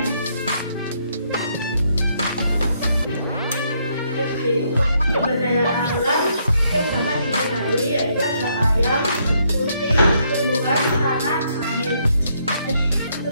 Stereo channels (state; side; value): inverted; both; correlation -0.73